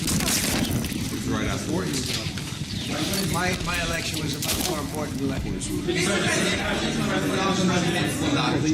the prize? It was right after. My election was a much more important election.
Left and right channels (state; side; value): identical; both; correlation 1.00